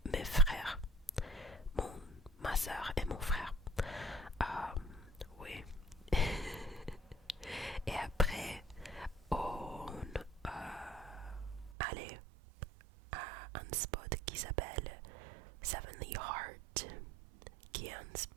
mes frères, ma soeur et mon frère. Oui. Et après, on allait à un spot qui s'appelle Sevenly Heart, qui est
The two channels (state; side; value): drops out; left; at 11.8 s